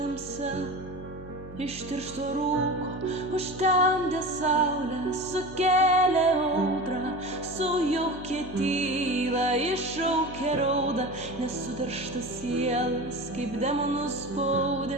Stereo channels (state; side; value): noise; left; hum, 16 dB below the sound